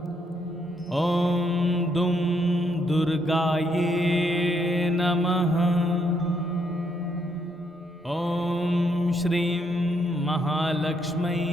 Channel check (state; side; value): normal; both; correlation 0.74